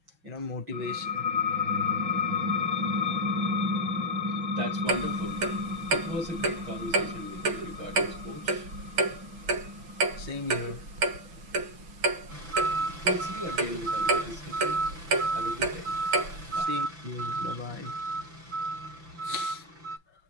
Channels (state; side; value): late; left; 6.0 ms